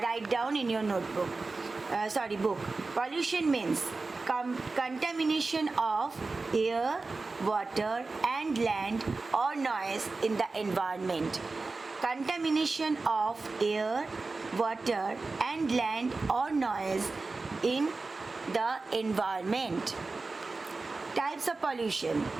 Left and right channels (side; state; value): left; quieter; 3.7 dB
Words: write down in your notebook. Book. Pollution means contamination of air, water and land or noise in the environment. Contamination of air, water and land or noise in the environment. Types of pollution: